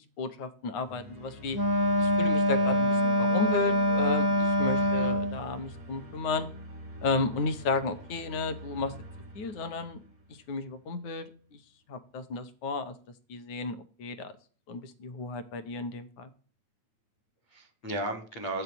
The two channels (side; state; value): right; late; 9.5 ms